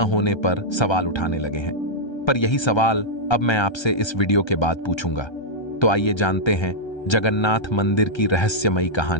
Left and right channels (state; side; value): late; right; 1.3 ms